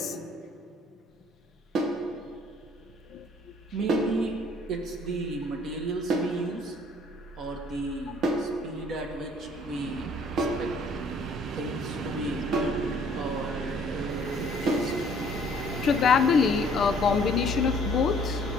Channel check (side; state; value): both; normal; correlation 0.59